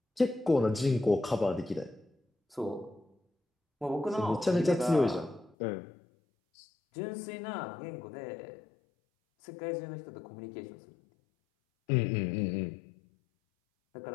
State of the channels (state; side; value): drops out; right; at 5.6 s